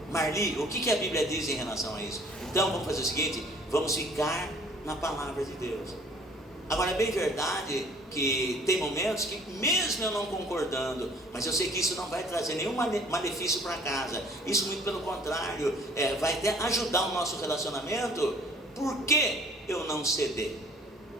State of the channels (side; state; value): both; normal; correlation 0.54